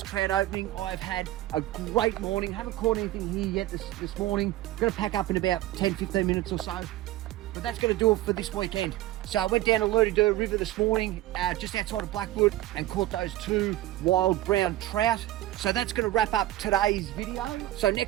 trout opening. I've had a great morning. Haven't caught anything here yet this morning. Going to pack up in about 10-15 minutes or so. But that's going to do it for this weekend. So I went down to Lerdederg River this morning, just outside of Blackwood, and caught those 2 wild brown trout. So that's going to wrap up today's video. So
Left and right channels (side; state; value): left; quieter; 15.4 dB